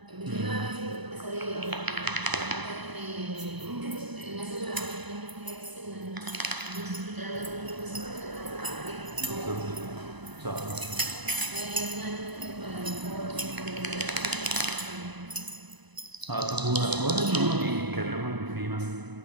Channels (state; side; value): late; left; 1.0 ms